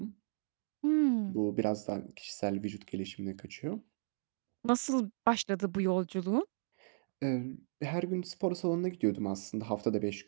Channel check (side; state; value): left; silent; digital silence